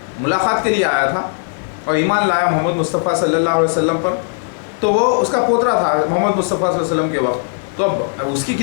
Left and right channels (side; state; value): right; silent; 65 dB below the other